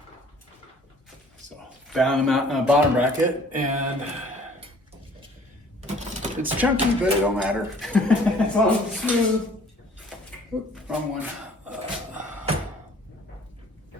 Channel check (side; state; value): both; normal; correlation 0.54